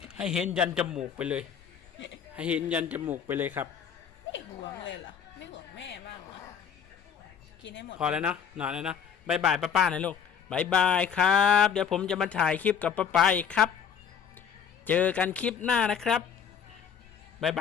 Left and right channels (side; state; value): right; quieter; 7.6 dB